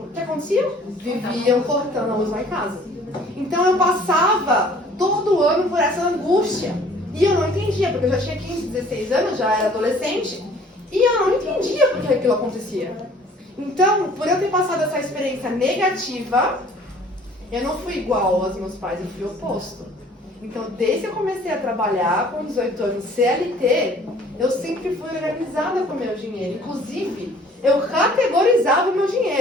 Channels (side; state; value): both; normal; correlation 0.54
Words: o que acontecia? Viviam cortando a luz lá em casa. Então eu passava todo ano por essa angústia. E eu não entendia, porque eu já tinha 15, 16 anos, já era adolescente. E eu não entendia por que aquilo acontecia. Então, por eu ter passado essa experiência negativa, eu não fui igual aos meus pais, eu fui oposto. Então, desde que eu comecei a trabalhar com 18 anos CLT, eu sempre fui organizada com o meu dinheiro. Inclusive, eu categorizava o meu